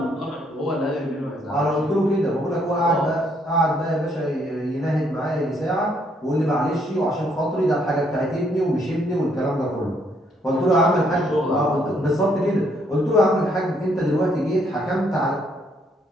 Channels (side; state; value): both; normal; correlation 0.70